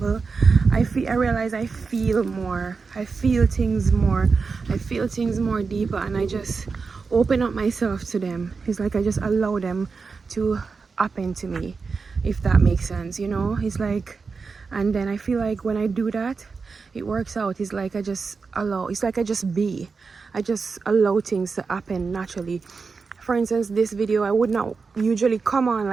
I realize I feel more. I feel things more. I feel things more deeper, and I just open up myself to them. It's like I just allow them to happen to me, if that makes sense, It's like, and then I feel like when I do that, it works out. It's like I just allow. It's like I just be. I just allow things to happen naturally. For instance, this video, I would not usually come on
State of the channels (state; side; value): quieter; left; 4.8 dB